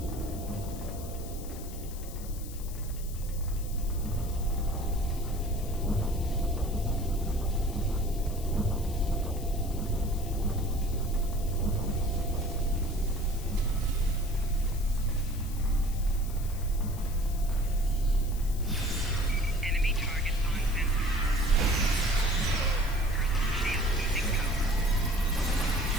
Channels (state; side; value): noise; left; hiss, 15 dB below the sound